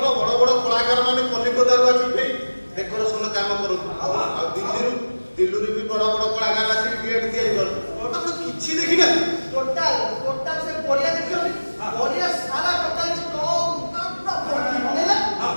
ବଡ ବଡ କଳାକାର ମାନେ କଲିକତାରୁ ଆସିକି ଡେକୋରେସନ କାମ କରନ୍ତି ଆଉ ଦିଲ୍ଲୀରୁ ବି ବଡ ବଡ କଳାକାର ଆସିକି ଗେଟ୍ ତିଆରି କରନ୍ତି ଆପଣ କିଛି ଦେଖିନାହାନ୍ତି ଟୋଟାଲ ସେ ପଡ଼ିଆ ଦେଖିଛନ୍ତି ପଡ଼ିଆ ସାରା ଟୋଟାଲ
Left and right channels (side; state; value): both; inverted; correlation -1.00